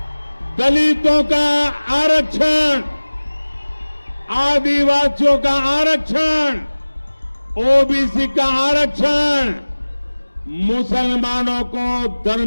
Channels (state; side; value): inverted; both; correlation -1.00